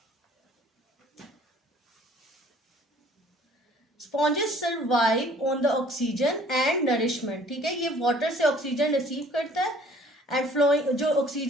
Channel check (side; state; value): both; normal; correlation 0.54